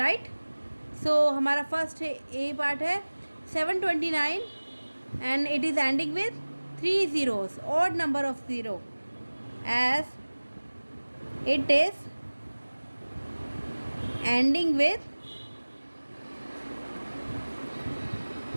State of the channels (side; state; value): both; inverted; correlation -1.00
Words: So हमारा फर्स्ट ए पार्ट है 729 and it is ending with 3 zeros, odd number of 0, as it is ending with